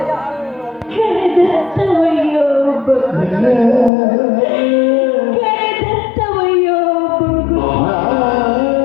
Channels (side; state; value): right; drops out; at 3.9 s